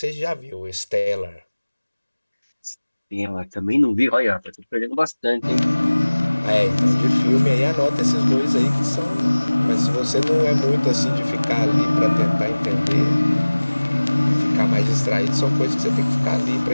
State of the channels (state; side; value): inverted; both; correlation -1.00